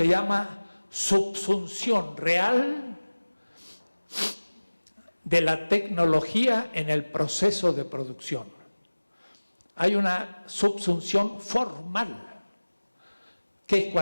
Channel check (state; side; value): inverted; both; correlation -1.00